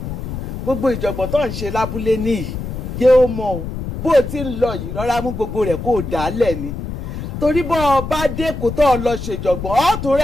gbogbo ìjọ̀gbọ̀n tó ń ṣe lábúlé níyì jẹ́ ó mọ̀ o bó o ti ń lọ yìí rọra mú gbogbo rẹ̀ kó o dà á lẹ̀ ni torí bọ́ ọ bá dẹ́kun tó ọ lọ ṣèjọ̀gbọ̀n ọ̀tún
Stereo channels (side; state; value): left; noise; rumble, 7 dB below the sound